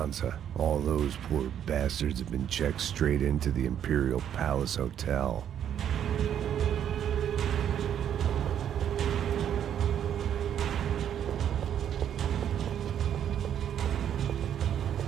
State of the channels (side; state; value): left; quieter; 9.6 dB